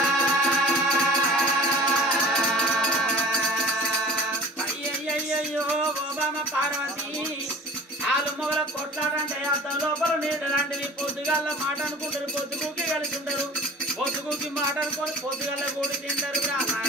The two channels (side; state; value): both; normal; correlation 0.42